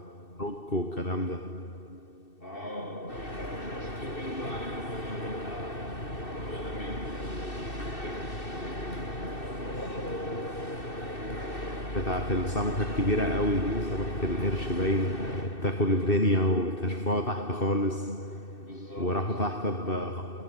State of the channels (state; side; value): late; right; 2.6 ms